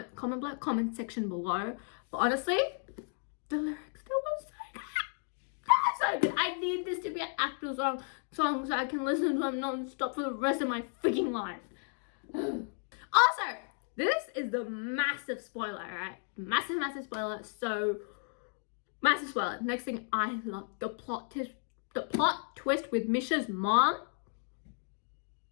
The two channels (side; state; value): right; silent; 55 dB below the other